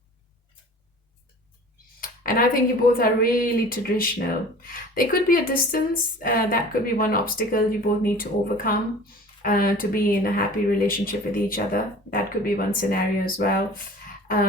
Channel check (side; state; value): both; normal; correlation 0.43